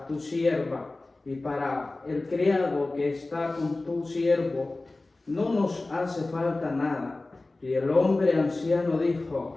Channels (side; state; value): right; quieter; 3.1 dB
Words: tu sierva, y para el criado que está con tu siervo. No nos hace falta nada. Y el hombre anciano